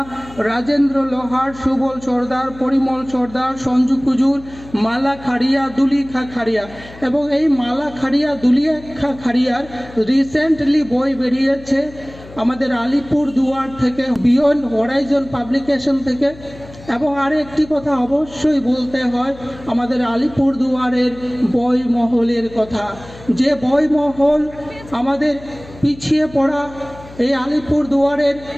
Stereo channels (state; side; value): noise; left; hum, 19 dB below the sound